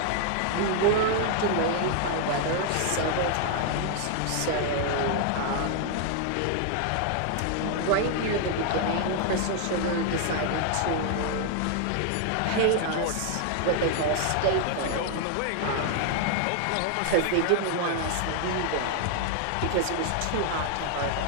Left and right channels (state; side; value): different; both; correlation 0.00